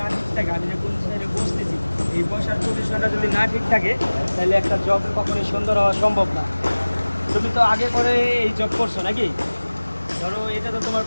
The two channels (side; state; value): both; inverted; correlation -1.00